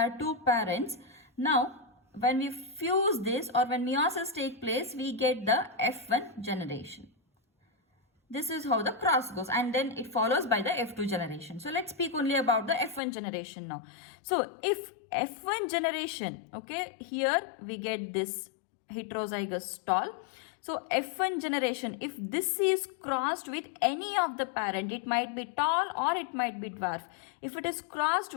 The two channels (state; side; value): drops out; right; at 13.0 s